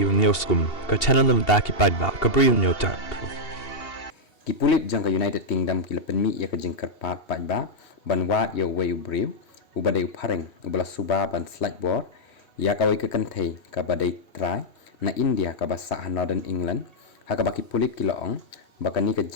newskum ka channel nam ta ki padba ka briu newtar. Ki pulit jang ka United Kingdom ki lepen mi ya ka jingkar pat padba ban wat ya wayu briu u badai pareng u bala suba ban slide board ya ka wai ka kanthei ka badai try na India ka basa Northern England ha ka baki pulit ki loong bakani ka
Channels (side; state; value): right; late; 2.8 ms